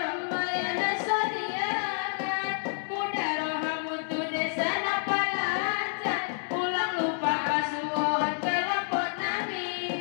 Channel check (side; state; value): right; silent; digital silence